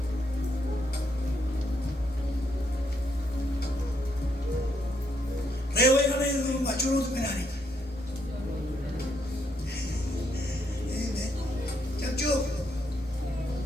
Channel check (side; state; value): both; normal; correlation 0.75